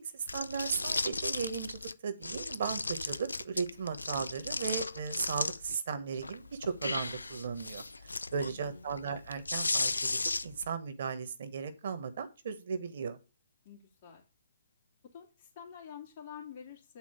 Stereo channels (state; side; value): inverted; both; correlation -0.79